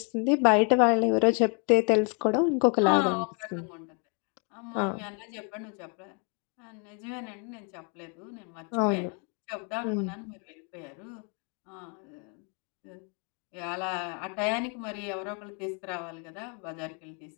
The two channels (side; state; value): right; quieter; 37.5 dB